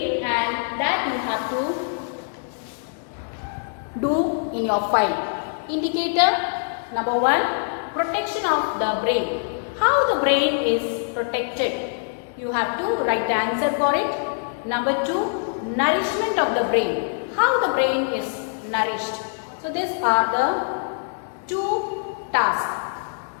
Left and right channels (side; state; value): right; silent; digital silence